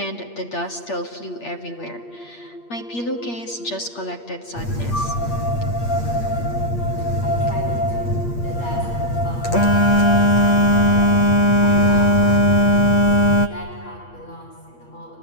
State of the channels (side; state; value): right; late; 8.5 ms